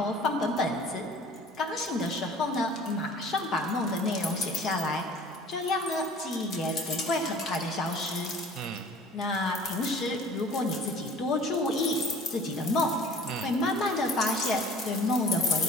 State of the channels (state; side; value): normal; both; correlation 0.47